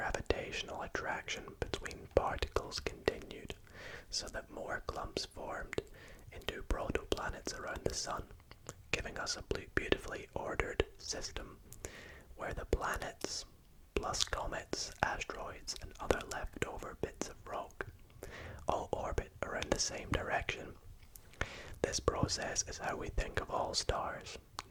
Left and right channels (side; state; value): both; identical; correlation 1.00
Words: attraction between particles continued, so that more clumps formed into protoplanets around the sun, giving us a beautifully ordered system where the planets, plus comets, asteroids, and other leftover bits of rock, all orbit around the same direction. This process is how we think of all stars,